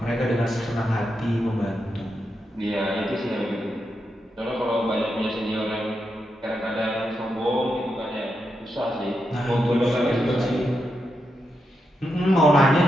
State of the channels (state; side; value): normal; both; correlation 0.85